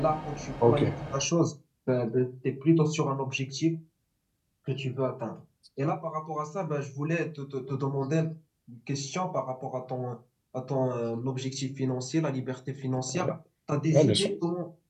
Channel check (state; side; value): identical; both; correlation 1.00